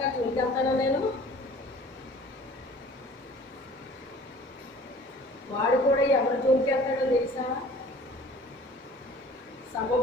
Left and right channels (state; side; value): normal; both; correlation 0.48